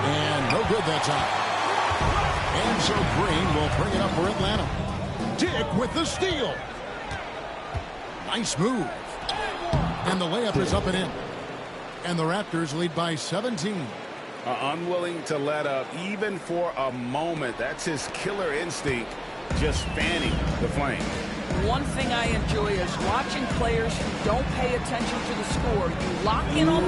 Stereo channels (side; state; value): both; identical; correlation 1.00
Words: no good that time. And so Green will bring it up for Atlanta. Dick with the steal. Nice move. And the layup is up and in. And the Raptors lead by 17. Unwilling to let up even for a moment. That's his killer instinct, just fanning the flame. One thing I enjoy is watching players who don't pay attention to the score. You lock in on